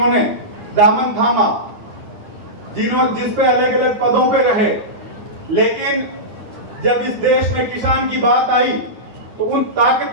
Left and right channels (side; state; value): left; late; 9.0 ms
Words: दामन थामा, जिस पे अलग अलग पदों पे रहे, लेकिन जब इस देश में किसान की बात आई तो उन